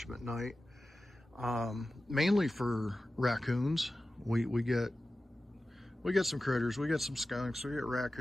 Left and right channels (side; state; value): both; normal; correlation 0.95